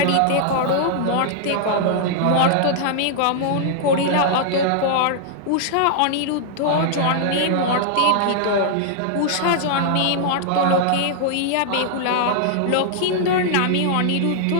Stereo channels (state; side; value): different; both; correlation -0.01